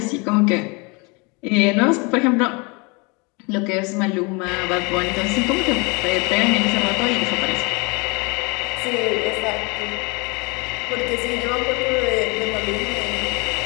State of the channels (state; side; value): quieter; right; 29.4 dB